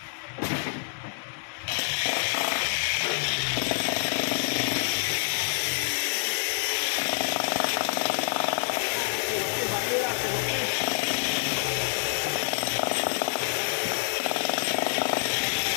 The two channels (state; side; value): silent; right; digital silence